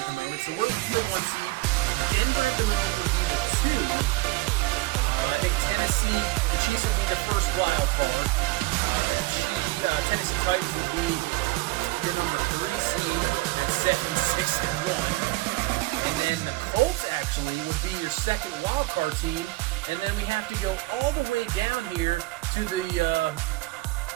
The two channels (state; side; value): quieter; left; 20.8 dB